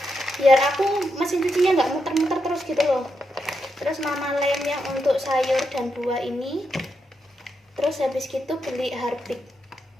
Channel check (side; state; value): both; normal; correlation 0.84